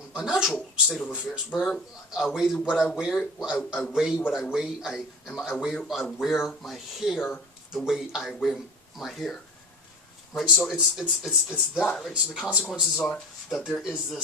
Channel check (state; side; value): normal; both; correlation 0.32